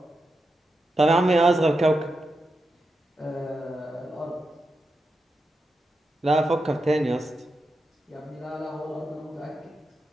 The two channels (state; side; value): normal; both; correlation 0.88